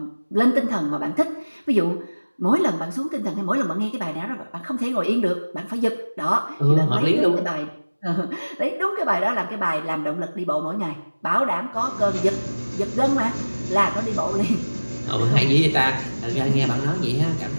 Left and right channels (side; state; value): both; inverted; correlation -1.00